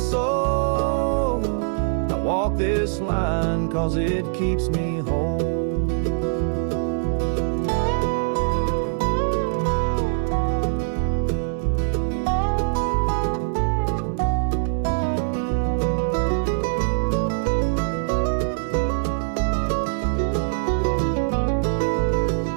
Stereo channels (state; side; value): silent; left; 63 dB below the other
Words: I walk this line 'cause it keeps me whole.